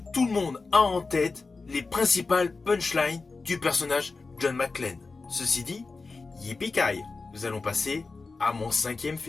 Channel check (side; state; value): right; quieter; 4.0 dB